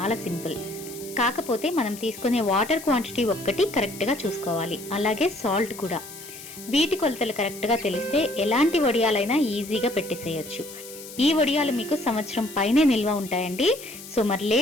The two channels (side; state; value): left; noise; hiss, 15 dB below the sound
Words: సింపుల్, కాకపోతే మనం తీసుకునే వాటర్ క్వాంటిటీ ఒక్కటి కరెక్ట్గా చూసుకోవాలి, అలాగే సాల్ట్ కూడా. వీటి కొలతలు కరెక్ట్గా తెలిస్తే ఎలాంటి వడియాలైనా ఈజీగా పెట్టేసేయచ్చు. ఈ వడియాలు మీకు సంవత్సరం పైనే నిల్వ ఉంటాయండి. సో మరి